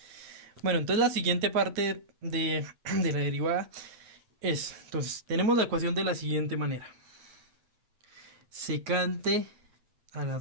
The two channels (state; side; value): late; left; 8.6 ms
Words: Bueno, entonces la siguiente parte de la derivada es, entonces, tenemos la ecuación de la siguiente manera. Secante a la